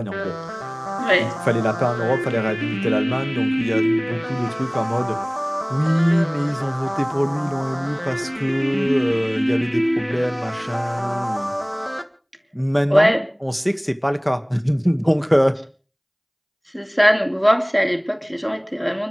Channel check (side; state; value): both; identical; correlation 1.00